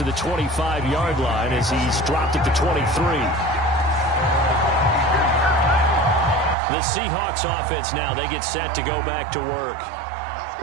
the 25-yard line as he's dropped at the 23. The Seahawks offense now, they get set to go back to work.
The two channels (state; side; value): drops out; left; at 6.6 s